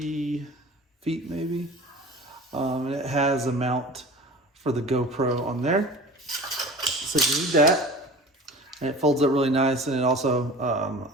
feet maybe. And it has a mount for the GoPro on there. So you need that, and it folds up really nice, and it also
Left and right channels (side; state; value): both; normal; correlation 0.39